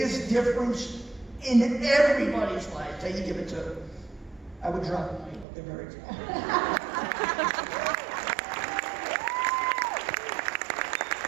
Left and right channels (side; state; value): left; drops out; at 5.5 s